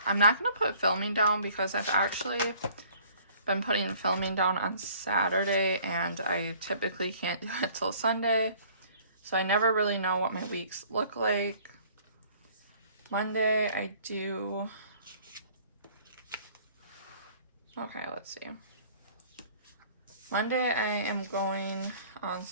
not going to put filming down because I've actually been putting filming down on Saturday, and I typically can't do it till Sunday. So I never really know what my weeks look like. Monday I do... Okay, let's see. Monday I am going on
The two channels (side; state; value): both; inverted; correlation -0.55